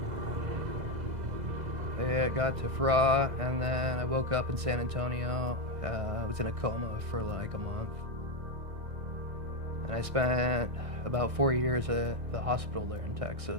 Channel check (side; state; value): left; late; 2.0 ms